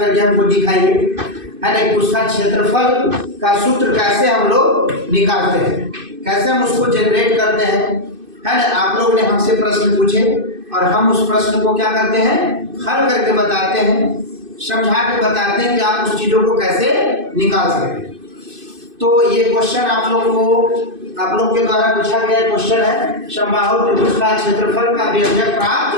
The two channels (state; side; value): late; left; 2.6 ms